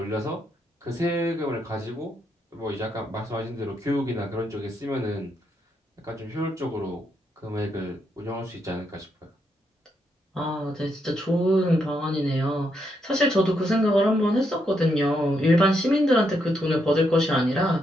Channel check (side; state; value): both; normal; correlation 0.79